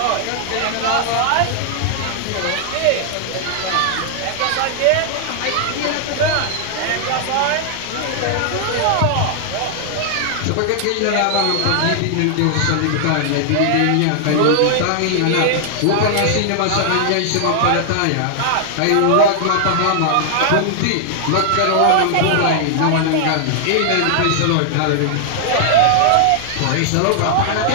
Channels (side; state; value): both; different; correlation 0.00